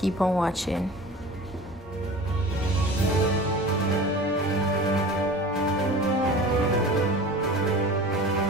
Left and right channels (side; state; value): both; normal; correlation 0.38